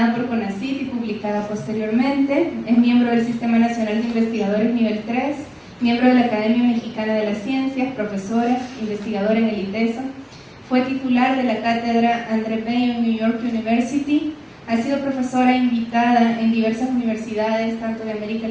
por CONACYT y publicada posteriormente. Es miembro del Sistema Nacional de Investigadores Nivel 3, miembro de la Academia Mexicana de las Ciencias, profesora, investigadora en el ITESO. Fue titular de la cátedra André Bello en New York University. Ha sido profesora invitada en diversas universidades, tanto de América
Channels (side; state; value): both; identical; correlation 1.00